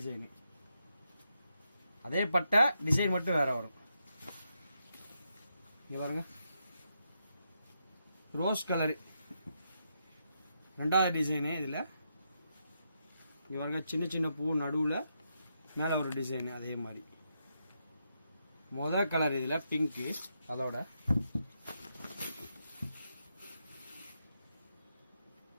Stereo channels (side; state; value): both; inverted; correlation -0.82